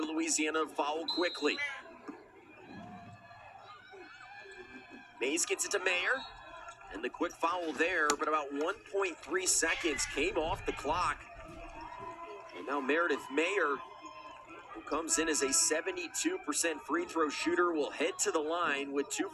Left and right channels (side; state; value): both; identical; correlation 1.00